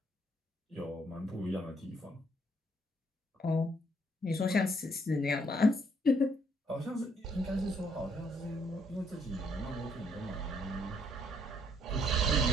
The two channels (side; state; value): both; normal; correlation 0.68